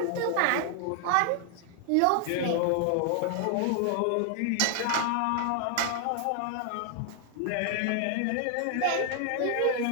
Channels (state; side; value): different; both; correlation 0.00